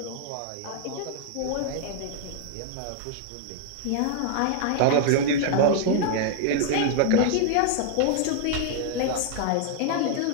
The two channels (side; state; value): both; different; correlation 0.00